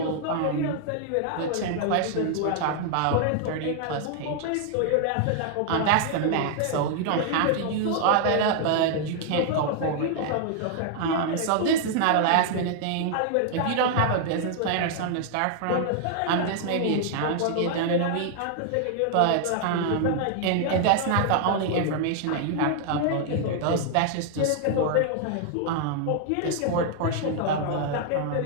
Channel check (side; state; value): both; different; correlation 0.00